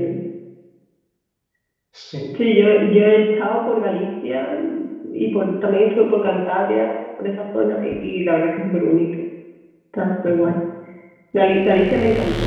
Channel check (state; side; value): identical; both; correlation 1.00